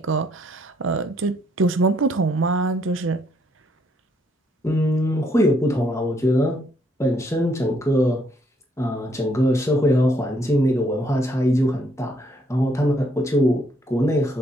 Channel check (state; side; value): normal; both; correlation 0.70